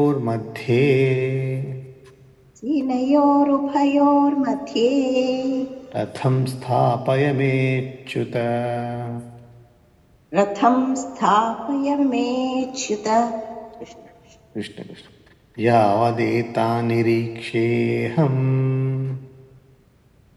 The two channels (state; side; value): identical; both; correlation 1.00